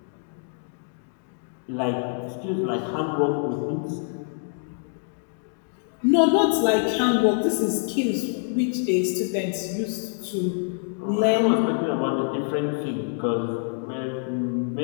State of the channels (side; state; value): right; silent; 61 dB below the other